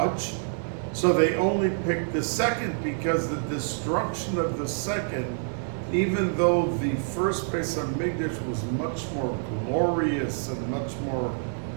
So they only picked the second, because the destruction of the second, even though the first Bais Hamikdash was much more glorious and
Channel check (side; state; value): left; silent; digital silence